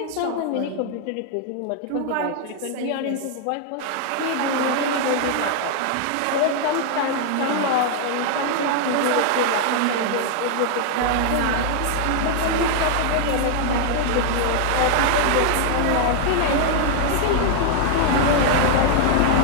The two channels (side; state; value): both; different; correlation 0.00